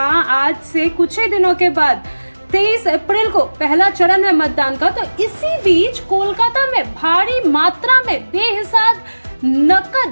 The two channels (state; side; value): inverted; both; correlation -1.00